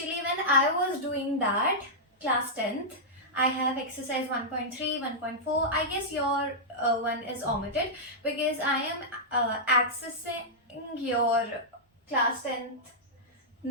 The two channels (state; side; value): normal; both; correlation -0.10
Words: when I was doing that, class 10th, I have exercise 1.3, 1.4. I guess your one is omitted because I am accessing your class 10th